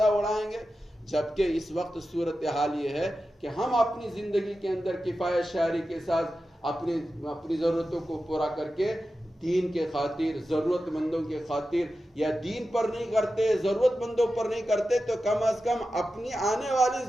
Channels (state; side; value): normal; both; correlation 0.92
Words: اڑائیں گے. جبکہ اس وقت صورتحال یہ ہے کہ ہم اپنی زندگی کے اندر کفایت شعری کے ساتھ اپنی ضرورتوں کو پورا کر کے دین کے خاطر، ضرورت مندوں کے خاطر، یا دین پر نہیں کرتے، ضرورت مندوں پر نہیں کرتے، تو کم از کم اپنی آنے والی